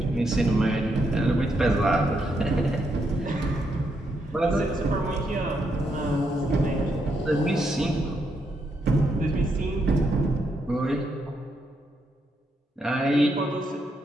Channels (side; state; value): both; normal; correlation 0.79